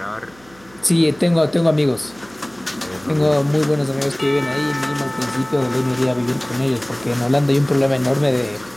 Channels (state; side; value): noise; right; hum, 27 dB below the sound